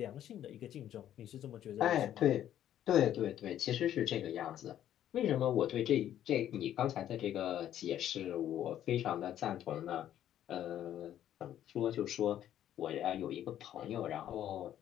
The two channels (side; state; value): right; quieter; 11.3 dB